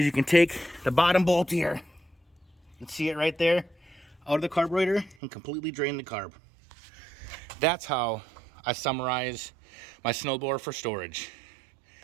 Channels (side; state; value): left; drops out; at 5.2 s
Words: you can take the bottom bolt here, you can see it right there, out of the carburetor and completely drain the carb. That's how I summarize my snowblower for storage.